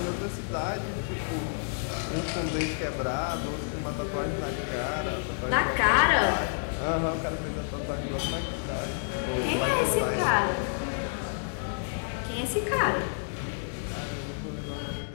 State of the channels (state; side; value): silent; right; digital silence